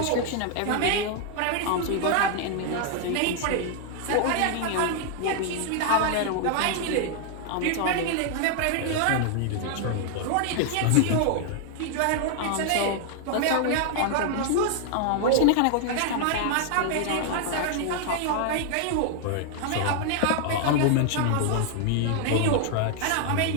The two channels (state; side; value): different; both; correlation 0.00